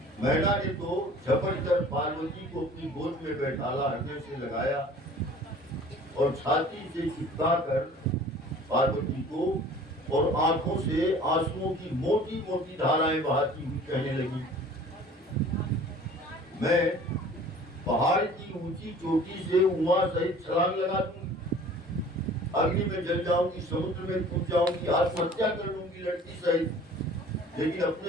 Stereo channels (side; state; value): both; normal; correlation 0.47